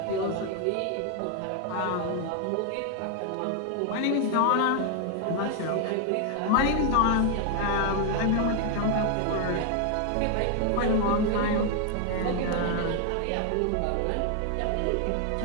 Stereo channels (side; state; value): both; different; correlation 0.00